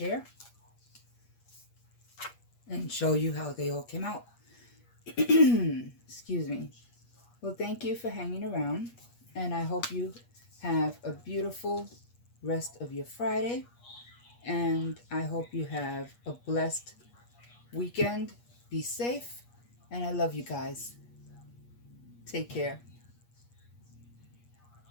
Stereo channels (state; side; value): late; right; 8.4 ms